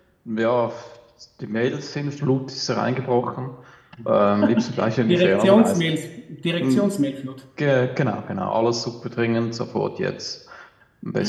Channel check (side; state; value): both; identical; correlation 1.00